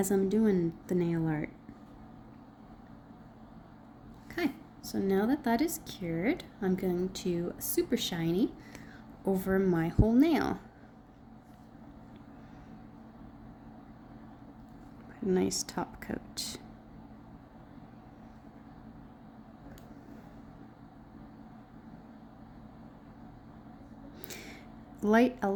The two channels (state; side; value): identical; both; correlation 1.00